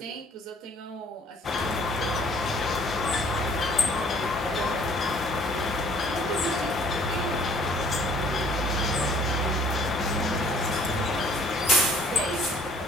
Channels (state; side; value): normal; both; correlation 0.57